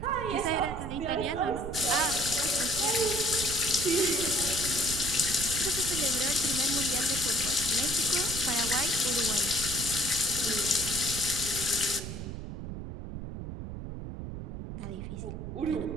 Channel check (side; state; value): right; noise; rumble, 8 dB below the sound